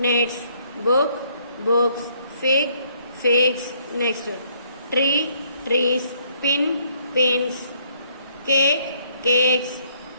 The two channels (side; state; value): both; inverted; correlation -0.67